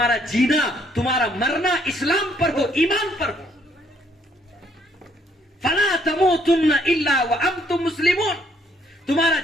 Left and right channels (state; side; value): normal; both; correlation 0.67